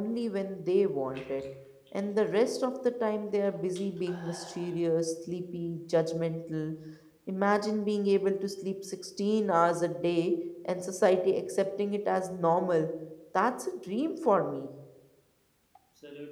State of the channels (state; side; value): identical; both; correlation 1.00